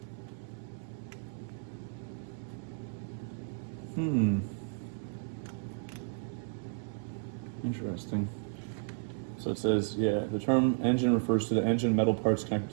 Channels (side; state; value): left; silent; digital silence